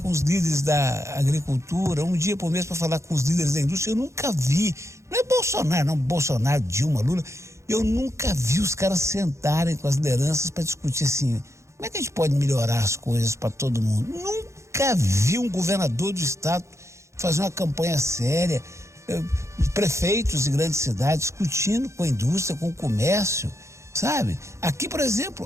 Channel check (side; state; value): left; late; 0.14 ms